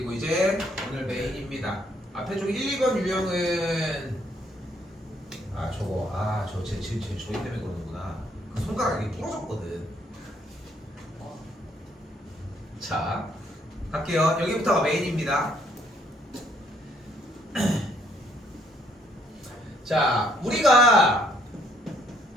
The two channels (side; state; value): both; normal; correlation 0.67